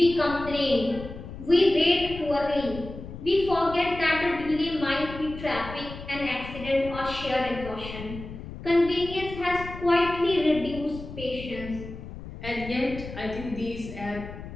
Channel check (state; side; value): noise; left; rumble, 12 dB below the sound